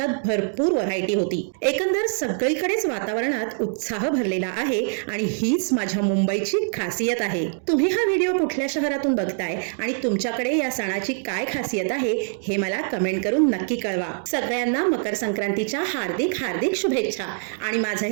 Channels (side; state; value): left; silent; 63 dB below the other